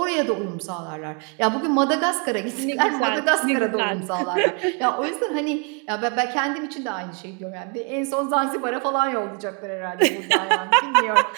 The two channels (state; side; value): quieter; left; 37.0 dB